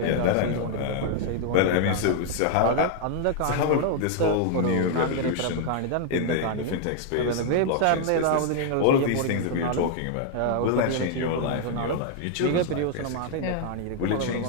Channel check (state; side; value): different; both; correlation 0.00